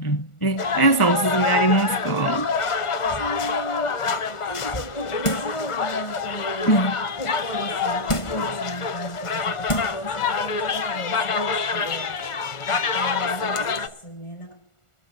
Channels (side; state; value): right; late; 1.4 ms